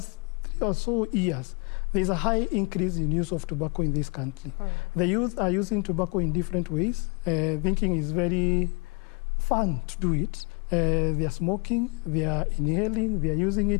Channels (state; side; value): quieter; right; 31.3 dB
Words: 3 or so years, there's a high increase in use of tobacco in this country. The youth are using tobacco in different ways, thinking it's very fun to do it. They are smoking, they are inhaling, they are using